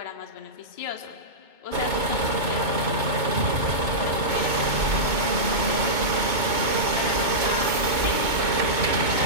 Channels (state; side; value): late; left; 2.2 ms